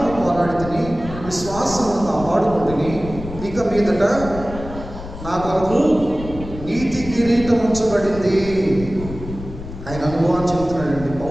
పోరాడితిని, విశ్వాసమును కాపాడుకుంటుని, ఇక మీదట నా కొరకు నీతి కిరీటం ఉంచబడింది. ఆయన అనుభవాన్ని చెప్తున్నాడండి,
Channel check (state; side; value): noise; left; rumble, 11 dB below the sound